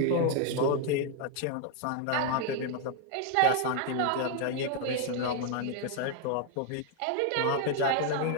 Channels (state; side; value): different; both; correlation 0.00